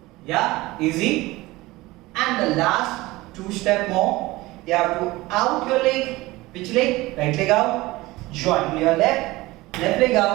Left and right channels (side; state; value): left; quieter; 19.8 dB